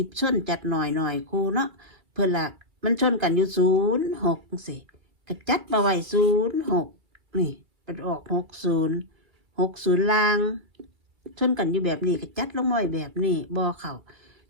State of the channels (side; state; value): left; late; 2.1 ms